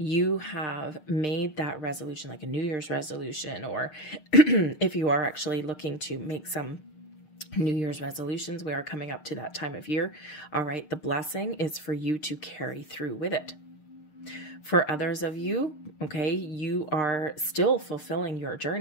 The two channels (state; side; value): late; right; 6.5 ms